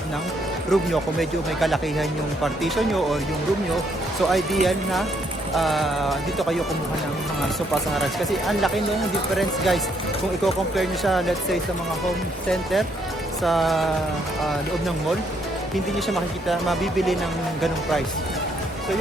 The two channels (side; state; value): both; normal; correlation 0.71